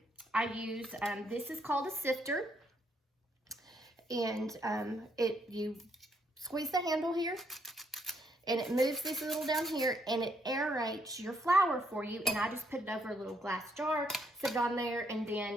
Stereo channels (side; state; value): both; normal; correlation 0.72